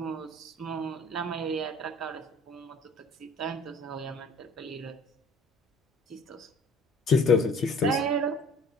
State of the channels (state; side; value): normal; both; correlation 0.50